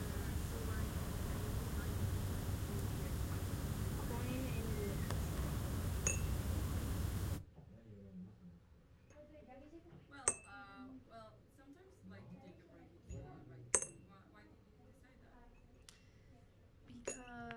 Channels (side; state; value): both; identical; correlation 1.00